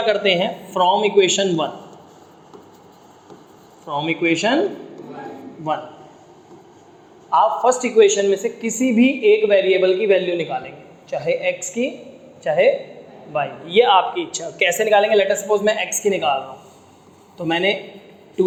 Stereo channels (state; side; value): identical; both; correlation 1.00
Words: करते हैं, फ्रॉम इक्वेशन 1 आप फर्स्ट इक्वेशन में से किसी भी एक वेरिएबल की वैल्यू निकालेंगे, चाहे x की चाहे y, ये आपकी इच्छा। कैसे निकालेंगे, लेट अस सपोज मैं x की निकाल रहा हूँ, तो मैंने